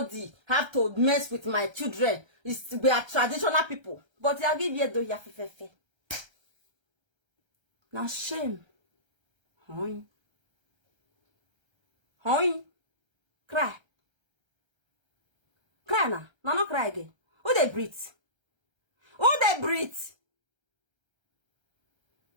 have to mess with my children. We are traditional people. But I give you though, you have now shame. Hoi. Cry. Cry now. No, not cry again. Who they breathe?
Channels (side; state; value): left; late; 1.3 ms